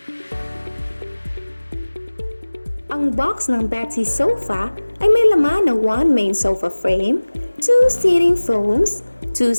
Ang box ng Betsy Sofa ay may laman na 1 main sofa frame, 2 seating foams, 2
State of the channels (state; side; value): inverted; both; correlation -1.00